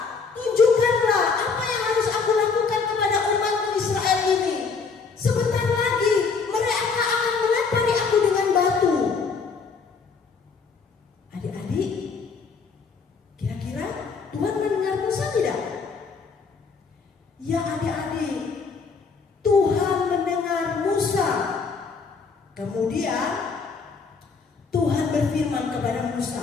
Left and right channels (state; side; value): quieter; right; 5.0 dB